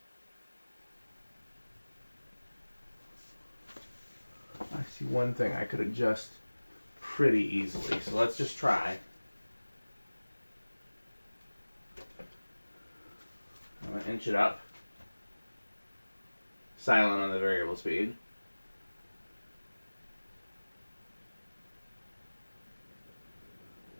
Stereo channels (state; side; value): inverted; both; correlation -1.00